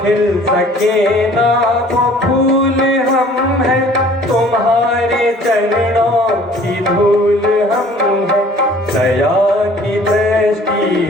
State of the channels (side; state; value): both; normal; correlation 0.52